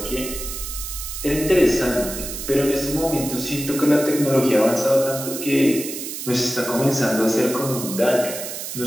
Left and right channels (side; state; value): right; noise; hiss, 7 dB below the sound